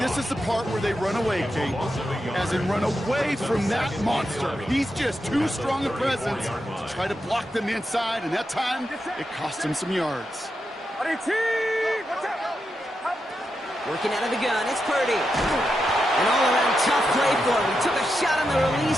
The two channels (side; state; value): both; normal; correlation 0.86